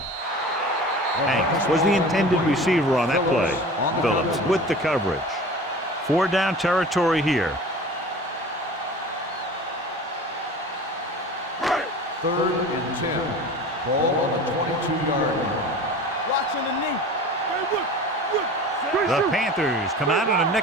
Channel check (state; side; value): normal; both; correlation 0.38